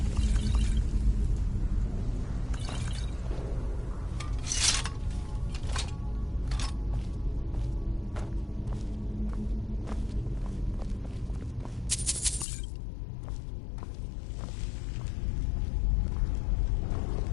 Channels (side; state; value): right; drops out; at 12.5 s